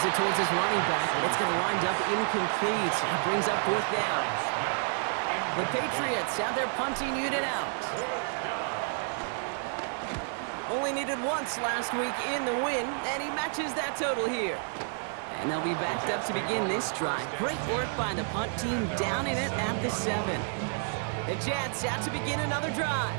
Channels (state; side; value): silent; left; 58 dB below the other